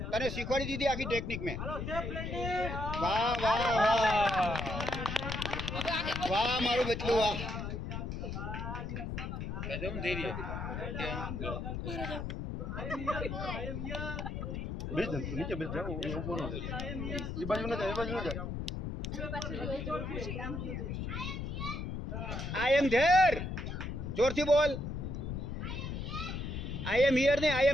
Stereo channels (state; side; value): noise; left; rumble, 4 dB below the sound